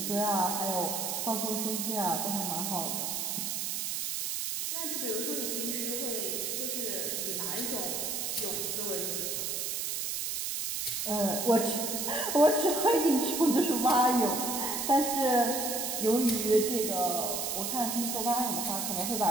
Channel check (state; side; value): noise; right; hiss, 2 dB below the sound